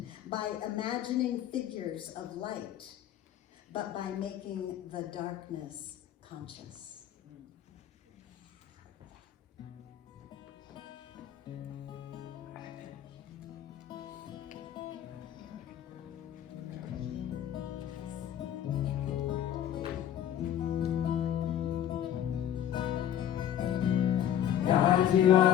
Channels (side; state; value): right; quieter; 10.5 dB